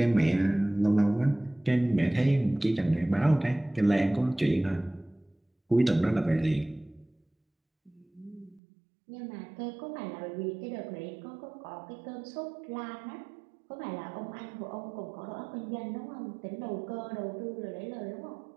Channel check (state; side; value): drops out; left; at 8.6 s